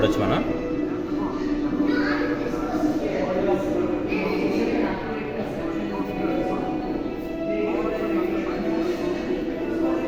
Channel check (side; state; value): both; identical; correlation 1.00